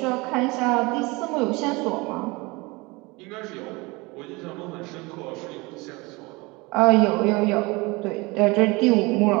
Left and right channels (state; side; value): quieter; left; 24.7 dB